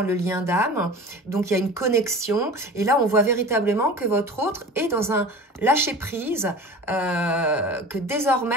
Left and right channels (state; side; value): normal; both; correlation 0.37